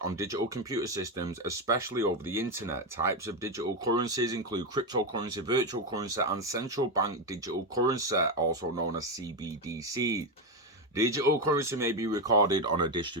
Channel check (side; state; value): both; normal; correlation 0.10